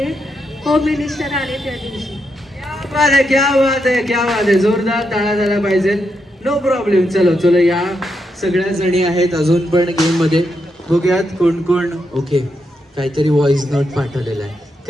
होम मिनिस्टर आले त्या दिवशी. क्या बात आहे, जोरदार टाळ्या झाला पाहिजे. No problem. चलो चलो, या सगळ्या जणी आहेत अजून पण गेम मध्ये. बघूयात कोण कोण. ओके, काहीतरी व्हॉइस नोट पाठवलेला आहे.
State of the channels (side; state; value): both; normal; correlation 0.82